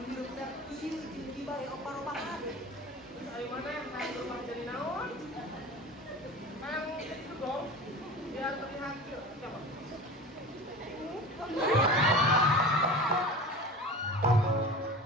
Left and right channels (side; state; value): both; normal; correlation 0.35